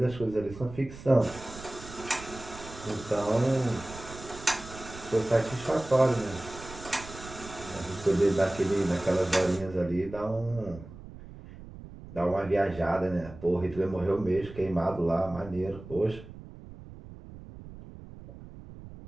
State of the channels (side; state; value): right; noise; rumble, 15 dB below the sound